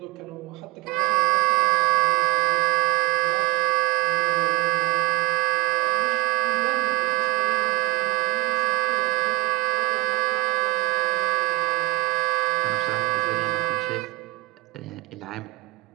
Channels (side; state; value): left; quieter; 22.9 dB